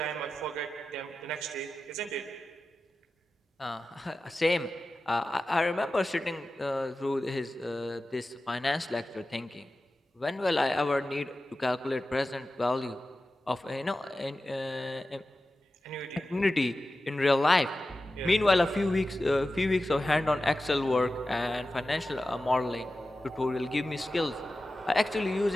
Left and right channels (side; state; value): both; normal; correlation 0.94